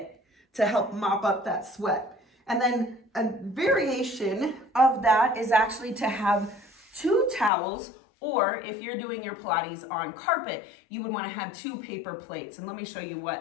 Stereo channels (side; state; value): right; drops out; at 7.5 s